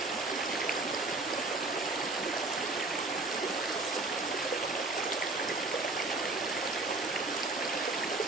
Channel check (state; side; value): quieter; left; 3.2 dB